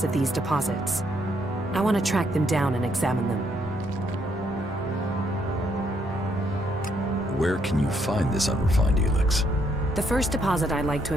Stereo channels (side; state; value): both; normal; correlation 0.73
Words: of these deposits. I want to track them down and examine them. Where can you find this unrefined ELEX? The first deposit I'd like to